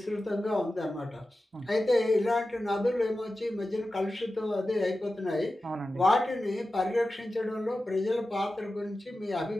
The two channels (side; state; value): both; normal; correlation 0.94